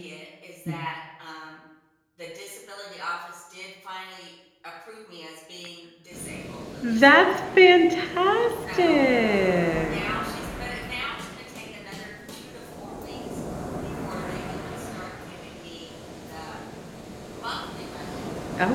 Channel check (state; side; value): identical; both; correlation 1.00